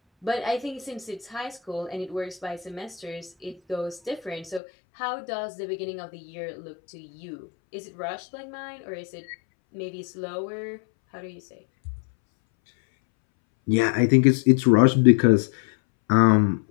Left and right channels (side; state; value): right; drops out; at 4.6 s